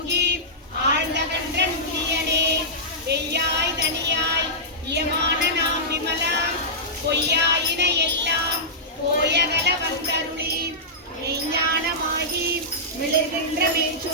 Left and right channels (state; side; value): normal; both; correlation -0.15